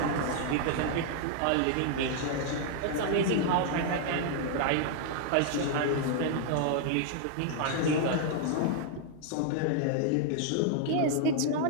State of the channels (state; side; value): different; both; correlation -0.01